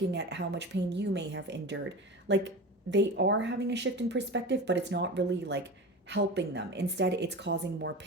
at how much pain you may have endured. Like, they are having a shift in perspective, but it's not really like helping them. Instead, it's causing more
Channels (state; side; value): normal; both; correlation 0.30